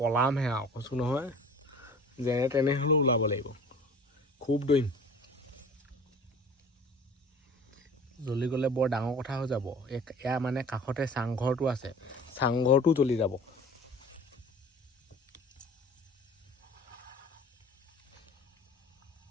আৰু কৈছোঁ নহয় যেনে তেনে হ'লেও ওলাব লাগিব খুব দৌৰিম জ্বলি গ'লে বৰ ডাঙৰ কথা হৈ যাব এয়া মানে কাষতে চাংঘৰটো আছে চাংঘৰটো জ্বলি যাব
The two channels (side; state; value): both; normal; correlation 0.45